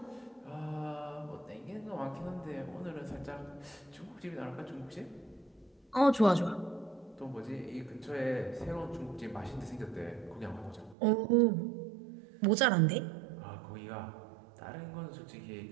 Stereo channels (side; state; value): left; drops out; at 11.0 s